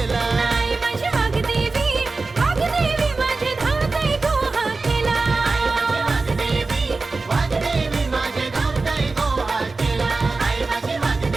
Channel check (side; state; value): left; quieter; 3.7 dB